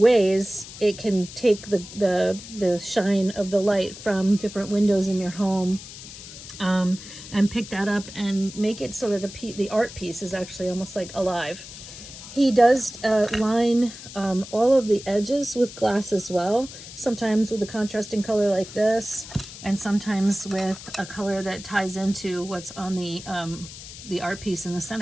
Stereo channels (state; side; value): noise; left; hiss, 14 dB below the sound